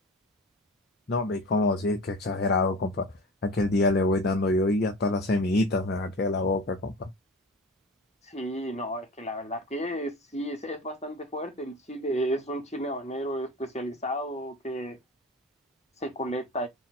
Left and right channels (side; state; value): both; normal; correlation 0.35